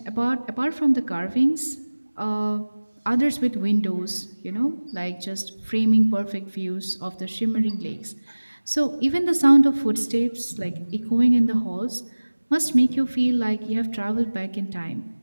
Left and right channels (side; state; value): both; inverted; correlation -1.00